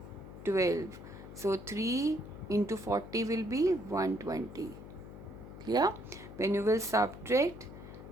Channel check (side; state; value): left; noise; hum, 14 dB below the sound